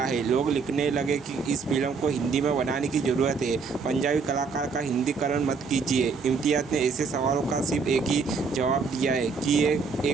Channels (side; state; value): left; quieter; 5.0 dB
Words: है। लोग लिखने लगे कि इस फिल्म को हिंदी में बनाने की ज़रूरत है, पंजाबी कलाकार का हिंदीकरण मत कीजिए। इम्तियाज़ ने ऐसे सवालों का सिर्फ एक ही जवाब दिया है कि ये